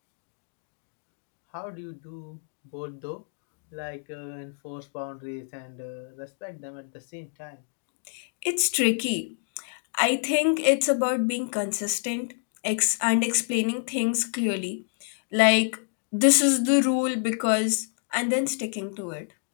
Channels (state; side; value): silent; right; digital silence